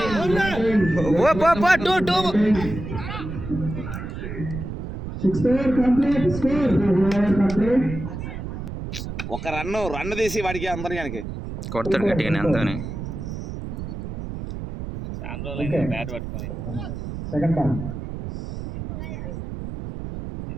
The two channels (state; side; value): noise; right; rumble, 7 dB below the sound